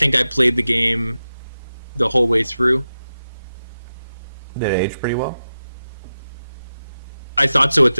I played the game the whole way through. Did it age pretty well? I thought so at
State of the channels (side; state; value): both; inverted; correlation -0.92